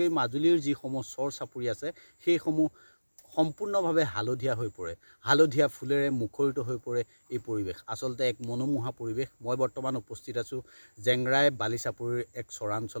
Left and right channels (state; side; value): inverted; both; correlation -1.00